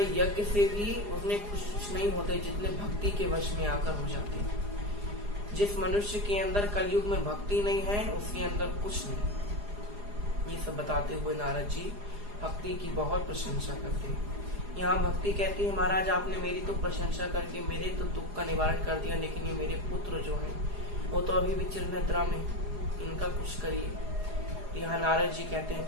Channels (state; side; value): late; left; 4.9 ms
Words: यज्ञ से भी उसने खुश नहीं होते जितने भक्ति के वश में आकर हो जाते हैं। जिस मनुष्य के अंदर कलयुग में भक्ति नहीं है, उसके अंदर कुछ नहीं। ये सब बताते हुए नारद जी भक्ति की बहुत प्रशंसा करते हैं। यहाँ भक्ति कहती है, महाराज आपने मेरी तो प्रशंसा करके मेरे तो दुख का निवारण कर दिया, लेकिन ये मेरे पुत्र जो हैं वो तो अभी भी चिरनिद्रा में, इनका कुछ करिए। यहाँ नारद जी कहते हैं